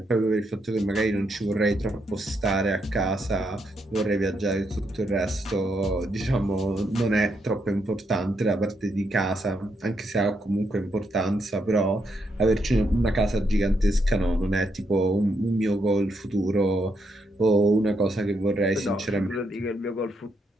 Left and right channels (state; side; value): normal; both; correlation 0.79